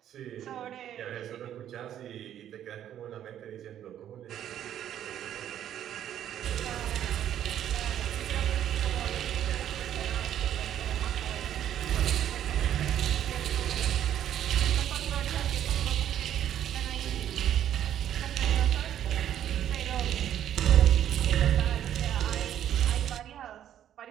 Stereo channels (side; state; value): left; quieter; 10.7 dB